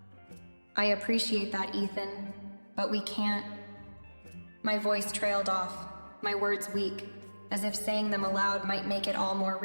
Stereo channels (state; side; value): inverted; both; correlation -1.00